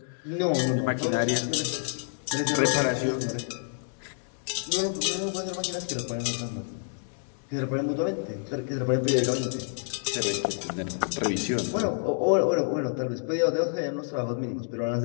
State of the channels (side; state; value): right; silent; digital silence